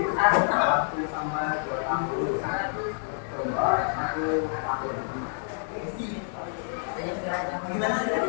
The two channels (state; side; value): silent; right; digital silence